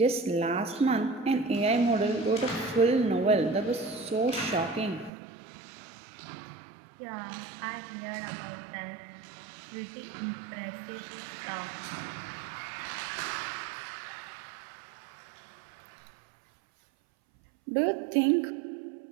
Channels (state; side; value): drops out; left; at 5.1 s